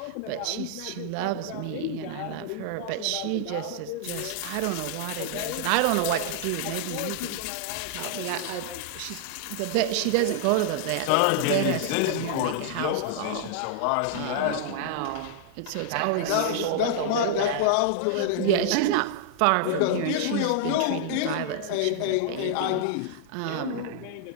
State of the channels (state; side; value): different; both; correlation -0.01